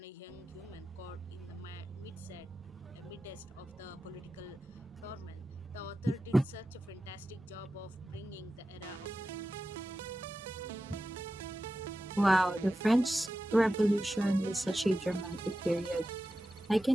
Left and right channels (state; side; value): normal; both; correlation 0.92